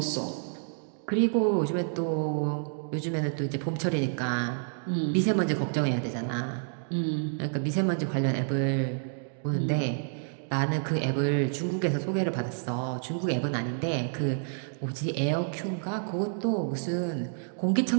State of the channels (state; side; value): silent; left; digital silence